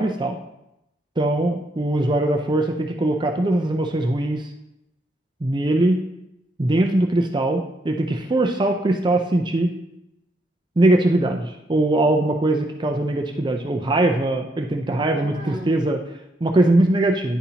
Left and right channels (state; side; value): normal; both; correlation 0.75